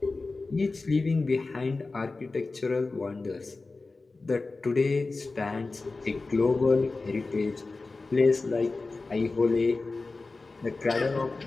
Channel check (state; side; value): quieter; right; 3.6 dB